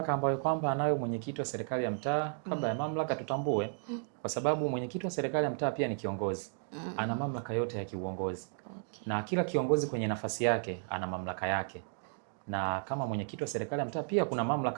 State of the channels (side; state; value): left; silent; 55 dB below the other